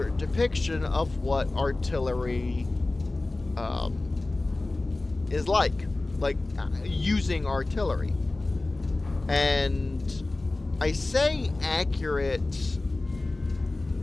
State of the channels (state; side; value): quieter; right; 3.0 dB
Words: depiction of what artillery is like using artillery. And I say accurate.